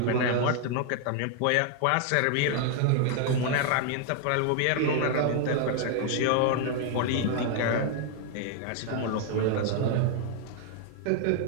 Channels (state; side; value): different; both; correlation 0.00